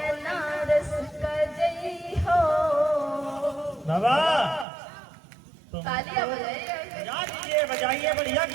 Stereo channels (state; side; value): drops out; left; at 4.7 s